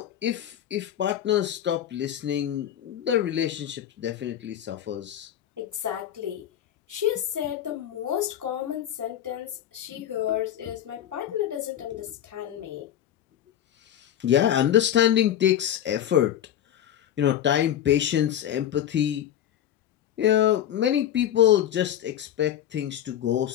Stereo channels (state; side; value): quieter; right; 10.9 dB